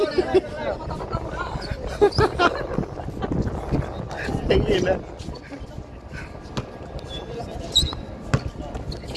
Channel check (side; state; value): both; identical; correlation 1.00